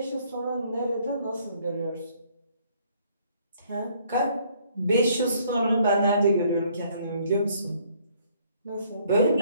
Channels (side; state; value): both; inverted; correlation -0.63